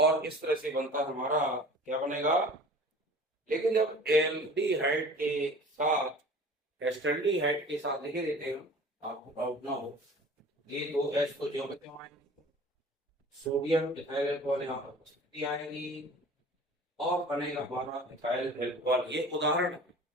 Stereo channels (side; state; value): both; normal; correlation 0.43